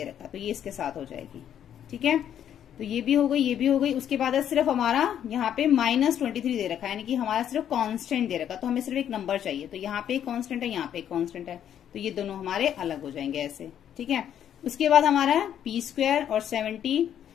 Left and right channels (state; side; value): quieter; right; 9.8 dB